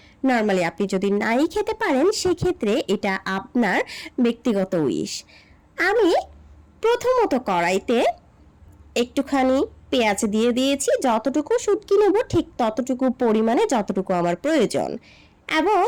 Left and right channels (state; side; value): identical; both; correlation 1.00